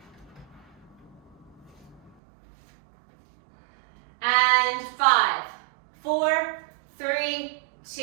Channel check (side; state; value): left; drops out; at 2.1 s